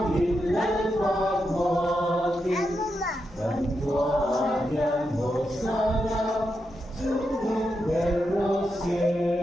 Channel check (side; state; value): both; normal; correlation 0.85